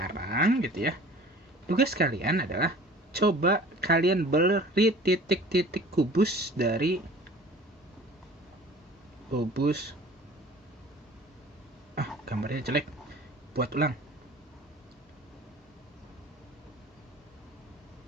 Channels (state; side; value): normal; both; correlation 0.45